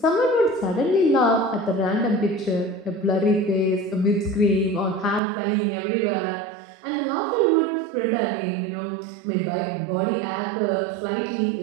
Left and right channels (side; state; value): left; drops out; at 5.2 s